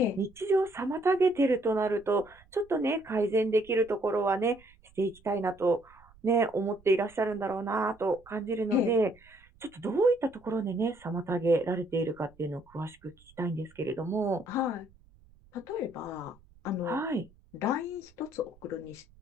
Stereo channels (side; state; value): right; noise; rumble, 28 dB below the sound